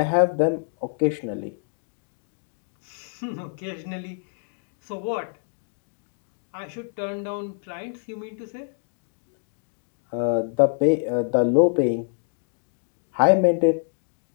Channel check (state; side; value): silent; right; digital silence